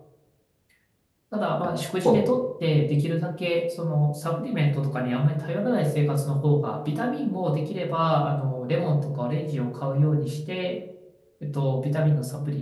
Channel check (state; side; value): identical; both; correlation 1.00